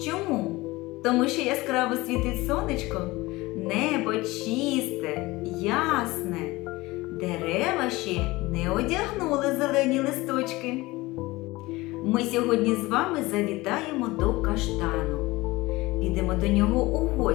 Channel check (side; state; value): right; quieter; 20.7 dB